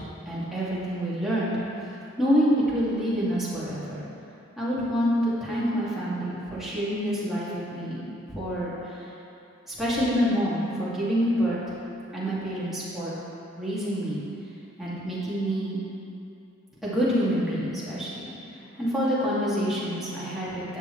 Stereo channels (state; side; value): normal; both; correlation 0.66